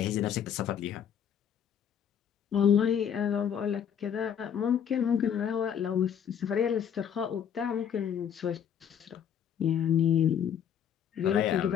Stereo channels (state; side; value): quieter; right; 8.6 dB